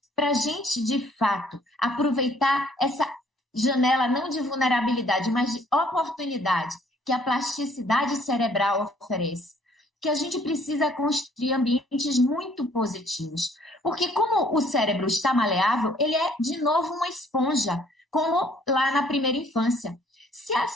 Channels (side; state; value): both; normal; correlation 0.61